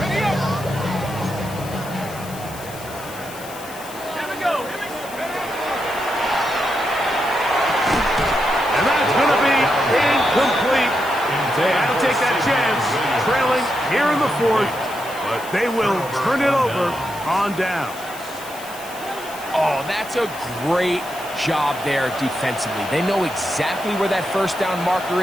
They will turn it over on down. Oh, that's a great job there defensively. They know exactly where that 1st down marker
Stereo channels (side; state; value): left; noise; hiss, 16 dB below the sound